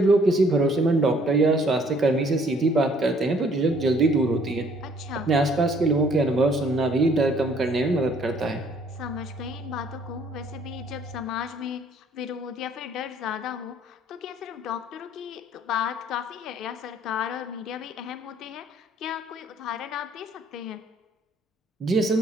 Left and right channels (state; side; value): normal; both; correlation 0.60